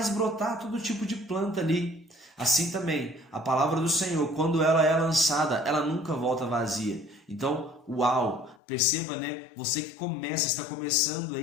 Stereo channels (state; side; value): drops out; right; at 8.6 s